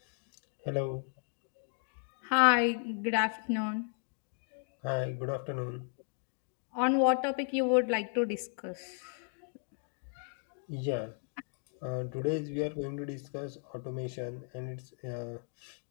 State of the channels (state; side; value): silent; right; 54 dB below the other